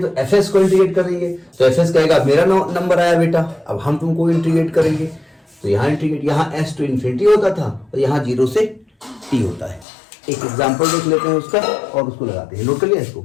एफ एस को इंटीग्रेट करेंगे, तो एफ एस कहेगा मेरा नंबर आया बेटा, अब हम तुमको इंटीग्रेट करेंगे। तो यहाँ इंटीग्रेट, यहाँ एस टू इन्फिनिटी होता था और यहाँ 0 से टी होता है। एक एग्जाम्पल देख लेते हैं उसका और उसको लगाते हैं। नोट कर लिया इसको?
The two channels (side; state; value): right; drops out; at 9.9 s